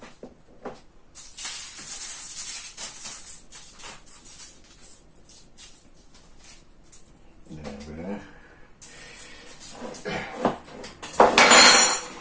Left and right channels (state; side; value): identical; both; correlation 1.00